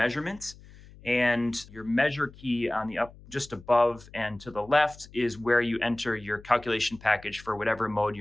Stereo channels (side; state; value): left; noise; hum, 21 dB below the sound